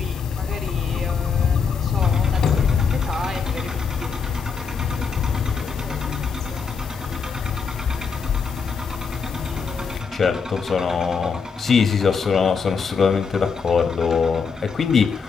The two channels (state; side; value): quieter; right; 5.6 dB